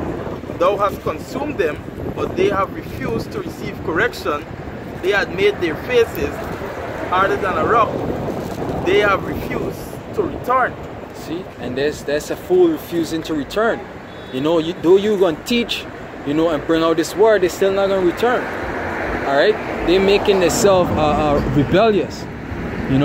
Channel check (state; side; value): identical; both; correlation 1.00